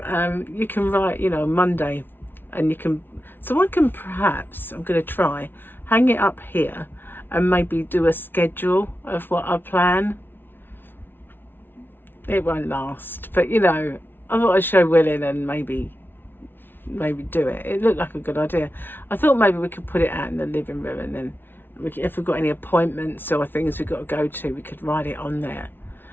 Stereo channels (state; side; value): late; right; 0.10 ms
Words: you can write, you know, Monday, and you can, so I can perhaps, I'm going to try, hang it up here and maybe do a schedule of what I plan. It won't last, but you know, I thought I'd show Willin and maybe do it. It looked like a good idea. I thought maybe we could put it out in the living room, and then if we've got any appointments or things we've got to go to, we could write it on there.